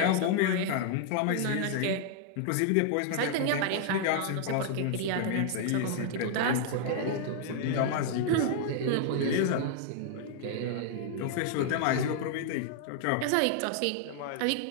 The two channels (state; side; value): different; both; correlation -0.01